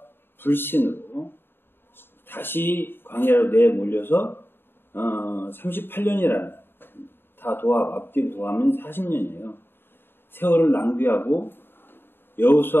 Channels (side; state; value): right; late; 0.10 ms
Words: 불신으로 다시 광야로 내몰려서 38년이라는 앞뒤로 더하면 40년이에요. 세월을 낭비하고